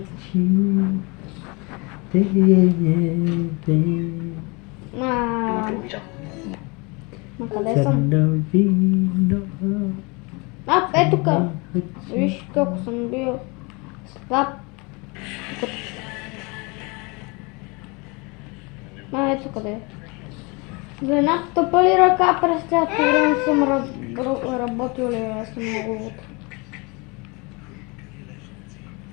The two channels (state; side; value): quieter; right; 28.5 dB